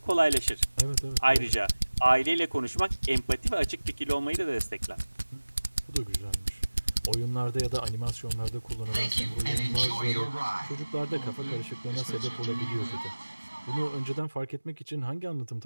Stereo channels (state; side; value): inverted; both; correlation -1.00